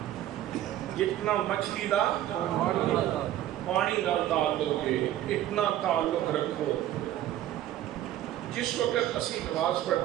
جتنا مچھلی دا پانی نال تعلق ہے، اتنا تعلق رکھو۔ جس وقت اسی نماز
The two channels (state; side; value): quieter; left; 12.9 dB